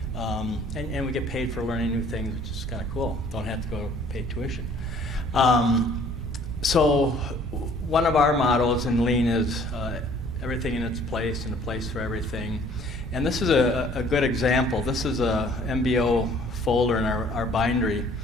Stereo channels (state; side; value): normal; both; correlation 0.56